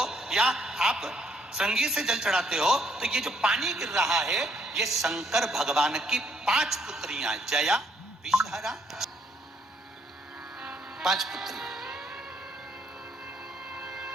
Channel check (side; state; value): both; normal; correlation 0.70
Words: या आप संगीत से जल चढ़ाते हो, तो ये जो पानी गिर रहा है, ये शंकर भगवान की 5 पुत्रियां, जया, विषहरा, 5 पुत्री।